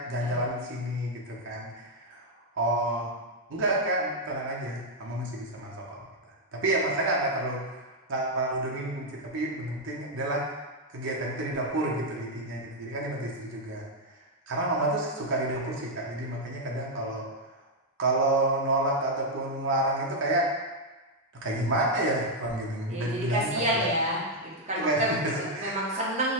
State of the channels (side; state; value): both; normal; correlation 0.00